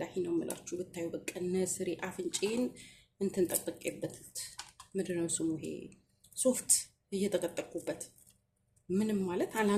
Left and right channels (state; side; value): identical; both; correlation 1.00